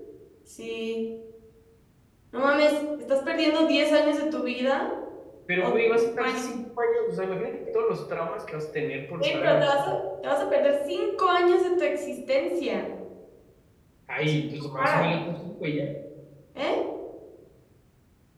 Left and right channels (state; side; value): identical; both; correlation 1.00